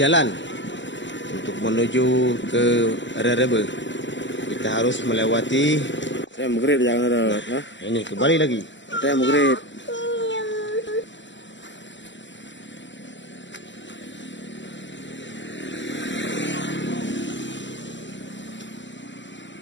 untuk menuju ke Rerebe. Kita harus melewati. Saya mugrid jangan ada. Ini kembali lagi. Saya mugrid.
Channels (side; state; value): right; late; 0.54 ms